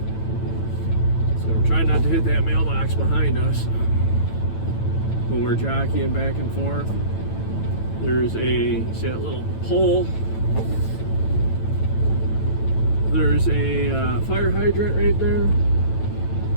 So we're trying not to hit that mailbox behind us when we're jockeying back and forth. There's see that little pole? There's a fire hydrant right there.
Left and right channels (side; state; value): right; late; 9.1 ms